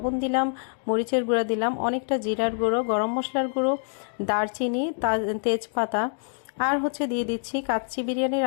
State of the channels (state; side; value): silent; right; digital silence